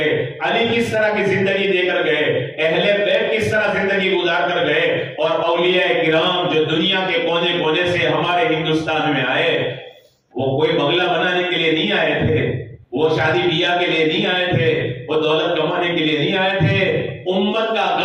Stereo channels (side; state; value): both; identical; correlation 1.00